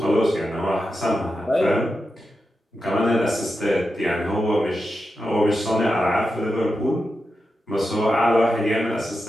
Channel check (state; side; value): normal; both; correlation 0.89